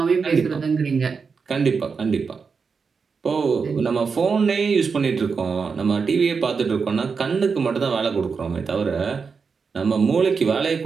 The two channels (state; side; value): quieter; left; 5.3 dB